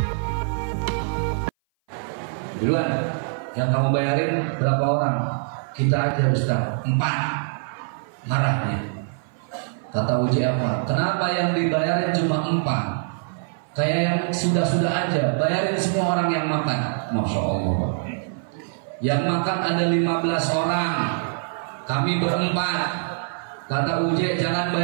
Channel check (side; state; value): left; silent; 58 dB below the other